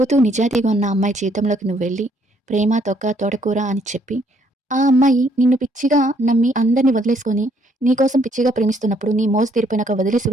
నిజాయితీగా ఉన్న అమ్మాయి జీవితంలోకి నువ్వు వెళ్ళి ప్రేమ తొక్క తోటకూర అని చెప్పి ఆ అమ్మాయి నిన్ను పిచ్చిగా నమ్మి అందరిని వదిలేసుకొని నీకోసం పిచ్చిగా ప్రేమిస్తున్నప్పుడు నీ మోజు తీరిపోయినాక వదిలేసి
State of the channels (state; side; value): normal; both; correlation 0.68